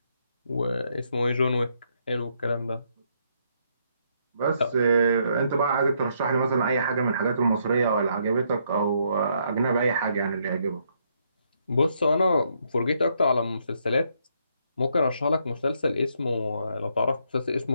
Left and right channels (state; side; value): inverted; both; correlation -0.74